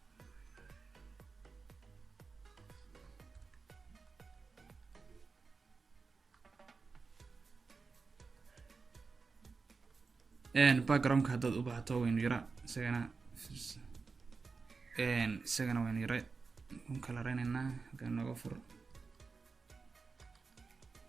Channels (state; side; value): quieter; left; 4.6 dB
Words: background-ka haddaad u baahato waynu yara isagana waynu yara kala reynaynaa. halkaan nooga fur.